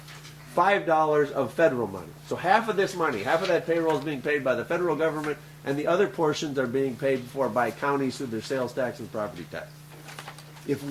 $5 of federal money. So half of this money, half of that payroll is being paid by the federal government, and the other portions are being paid for by counties through their sales tax and property tax. If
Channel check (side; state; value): both; identical; correlation 1.00